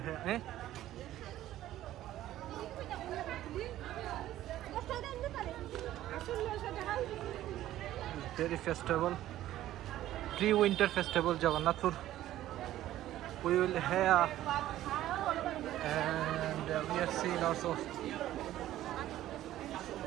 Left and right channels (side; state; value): left; quieter; 13.7 dB